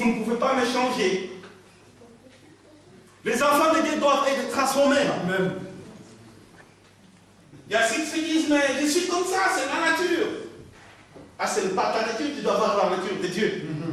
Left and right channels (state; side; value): identical; both; correlation 1.00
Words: ne pouvez pas me changer. Les enfants de Dieu doivent être transformés. Amen. Il y a ceux qui disent, mais je suis comme ça, c'est la nature. Ah, ce n'est pas ta nature, tu dois avoir la nature de Dieu.